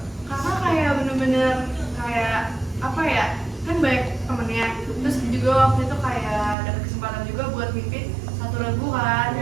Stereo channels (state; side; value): drops out; left; at 6.6 s